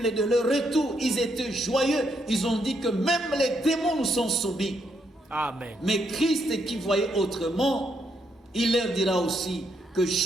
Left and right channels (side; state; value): both; normal; correlation 0.76